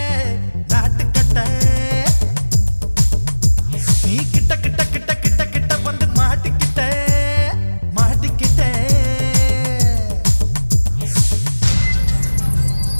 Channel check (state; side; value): inverted; both; correlation -1.00